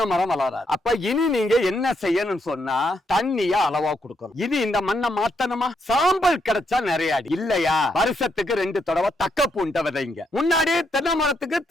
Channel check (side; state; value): both; normal; correlation 0.77